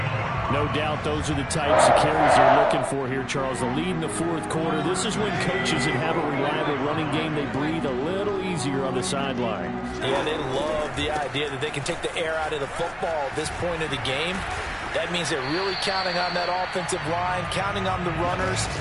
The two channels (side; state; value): both; identical; correlation 1.00